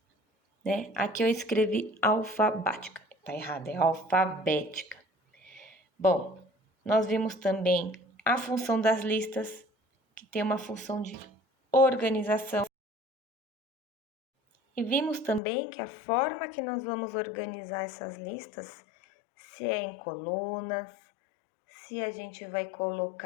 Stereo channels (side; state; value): right; drops out; at 15.4 s